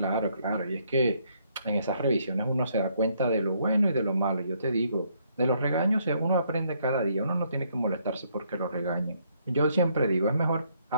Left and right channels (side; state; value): both; inverted; correlation -0.70